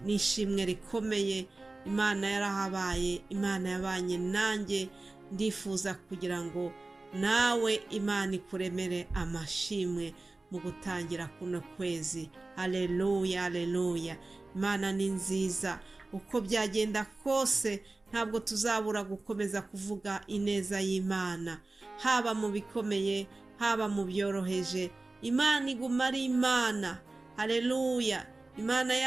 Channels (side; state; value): left; quieter; 3.1 dB